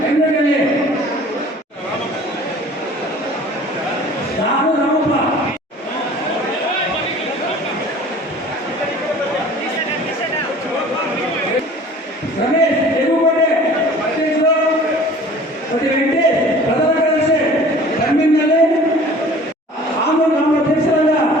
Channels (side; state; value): both; normal; correlation 0.47